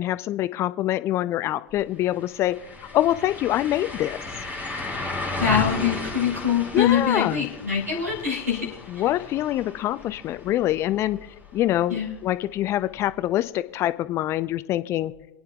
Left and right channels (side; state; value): right; quieter; 9.9 dB